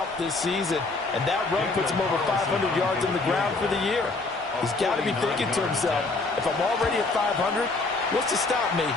this season. And that run puts him over 500 yards on the ground for the year. He's got to be thinking to himself, if I'm already at 500, what's to stop me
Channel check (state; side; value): quieter; right; 3.5 dB